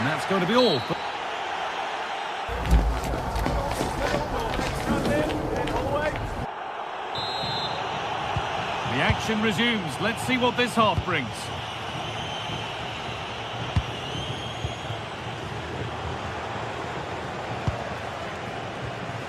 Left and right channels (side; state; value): both; identical; correlation 1.00